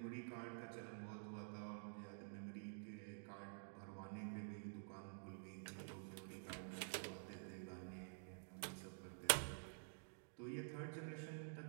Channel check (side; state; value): left; silent; digital silence